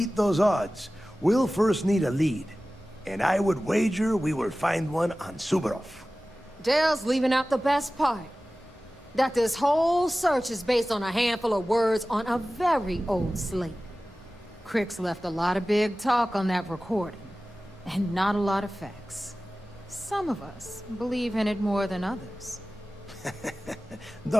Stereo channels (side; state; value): both; normal; correlation 0.96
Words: those odds, we'll first need a lead. And I would wager we will find one on Suvorov. Dale's leaving out the best part. That this whole search is based on a handful of words on a very old slate. Crix left a lot of big talk on that recording, and not a lot of facts. Some of us believe in it more than others.